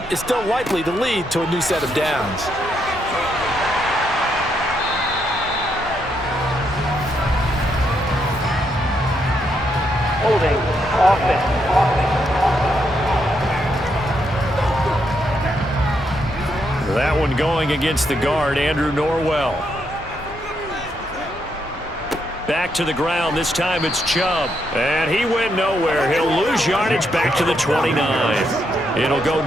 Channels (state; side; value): normal; both; correlation 0.78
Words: is still likely to lead to a new set of downs. Holding offense. That one going against the guard, Andrew Norwell. Back to the ground. This time it's Chubb. And he went nowhere. He'll lose yardage back to the 29. It'll go